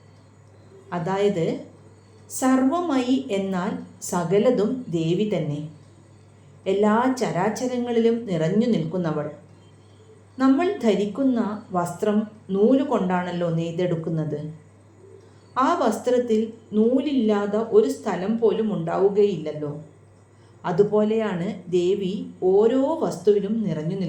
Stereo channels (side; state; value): both; identical; correlation 1.00